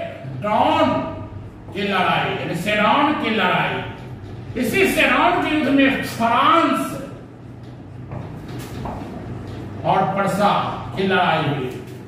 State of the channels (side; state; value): both; identical; correlation 1.00